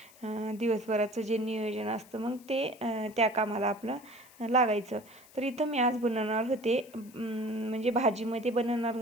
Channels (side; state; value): left; noise; hiss, 24 dB below the sound